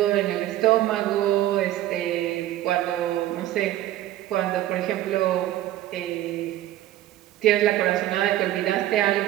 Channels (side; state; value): left; quieter; 14.1 dB